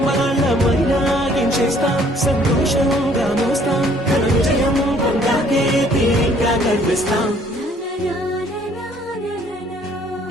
వాళ్ళమైనా ఏం చేస్తాం, సంతోషంగా మోస్తాం, ఘన విజయం పొందాకే తీరిగ్గా కనిపిస్తాం.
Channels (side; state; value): both; normal; correlation 0.60